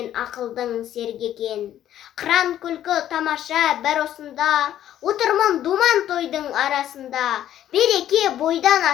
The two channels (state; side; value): quieter; right; 11.6 dB